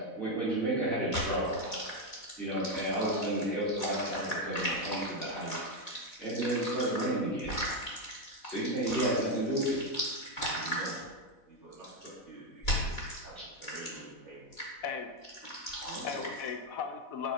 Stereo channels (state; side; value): late; right; 4.1 ms